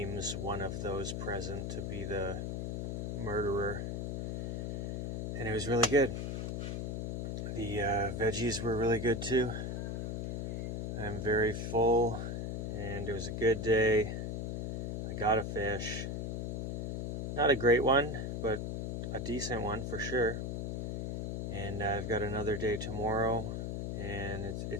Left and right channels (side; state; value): left; noise; hum, 2 dB below the sound